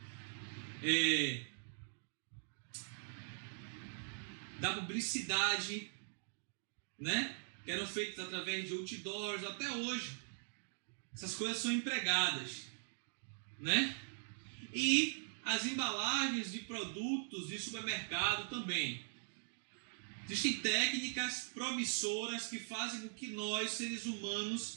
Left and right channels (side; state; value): left; silent; digital silence